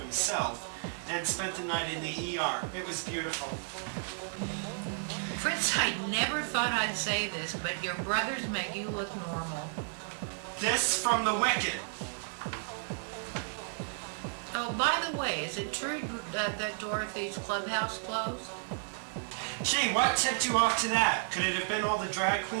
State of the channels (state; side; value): silent; left; digital silence